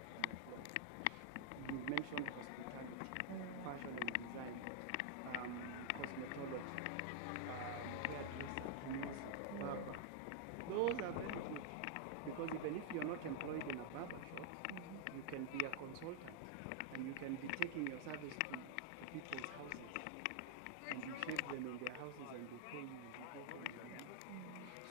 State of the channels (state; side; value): different; both; correlation 0.00